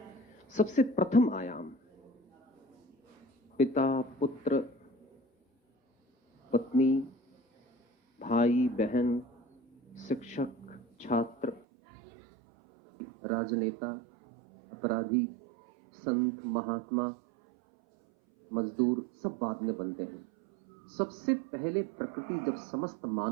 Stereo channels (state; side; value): drops out; left; at 11.6 s